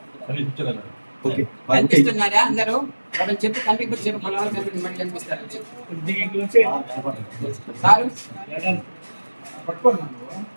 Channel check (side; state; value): both; inverted; correlation -1.00